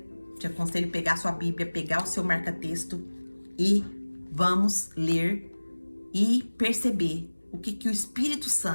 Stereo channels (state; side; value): inverted; both; correlation -1.00